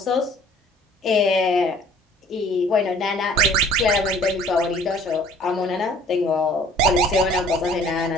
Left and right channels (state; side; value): normal; both; correlation 0.54